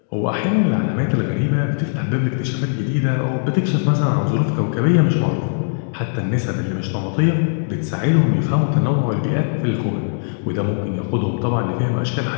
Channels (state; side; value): silent; right; digital silence